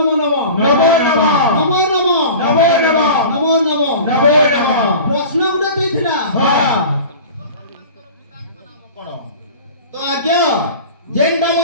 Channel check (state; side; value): inverted; both; correlation -0.37